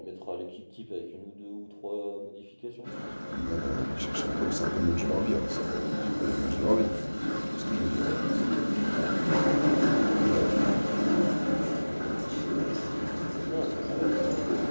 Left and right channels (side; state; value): both; inverted; correlation -1.00